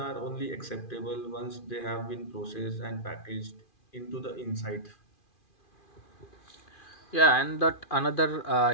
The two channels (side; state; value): right; late; 2.4 ms